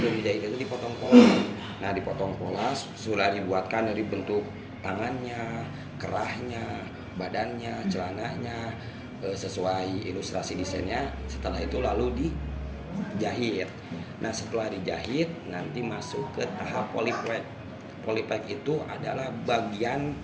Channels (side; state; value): both; identical; correlation 1.00